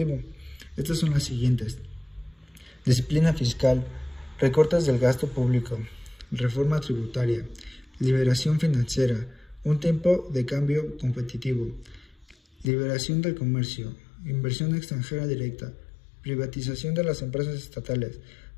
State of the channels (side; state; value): right; drops out; at 12.7 s